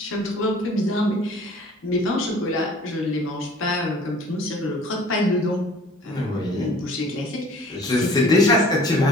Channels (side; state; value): both; normal; correlation 0.50